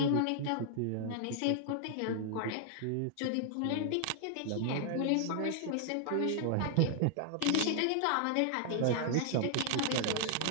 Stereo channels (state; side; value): different; both; correlation -0.01